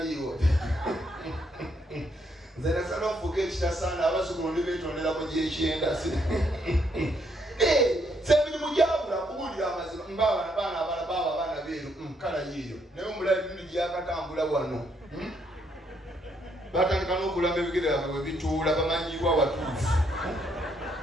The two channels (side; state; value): both; normal; correlation 0.73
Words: nzena sana ofuga ekitasaana abazukulu ndi beetondera mu gyekyenda semirimu gyabula kuwulira amazima mbabaana abaana beeru kala yiyo naye omulabi bindi gyakatambula wano batandika n'okulamba ebigere byabwe bwe bituula bamanyibwa watuufu